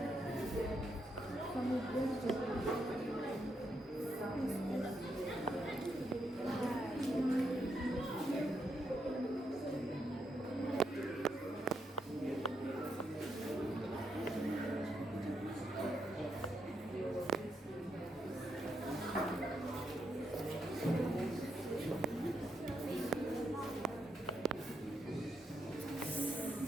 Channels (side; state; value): both; normal; correlation 0.80